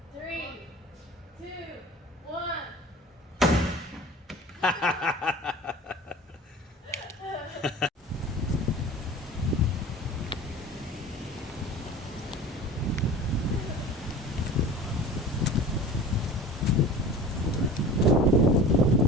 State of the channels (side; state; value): both; normal; correlation 0.39